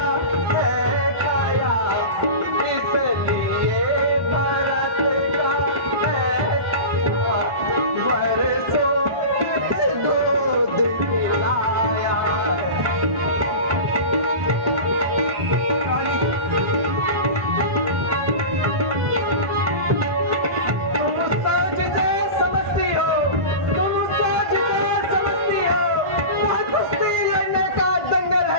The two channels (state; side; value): late; left; 1.4 ms